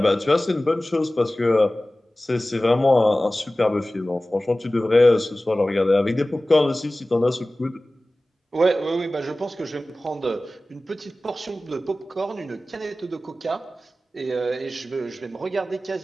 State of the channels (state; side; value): normal; both; correlation 0.97